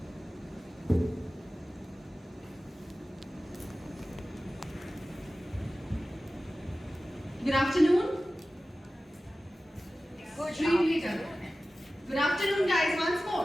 Good afternoon. Extremely done. Good afternoon, guys, once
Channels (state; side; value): normal; both; correlation 0.96